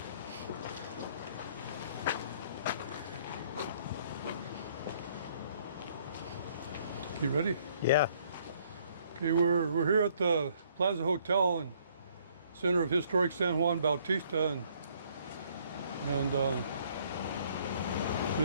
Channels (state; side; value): inverted; both; correlation -0.64